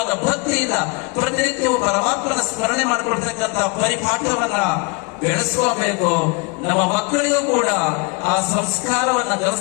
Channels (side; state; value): right; quieter; 29.5 dB